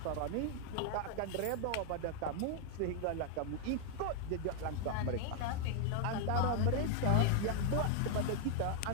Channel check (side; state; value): both; different; correlation 0.00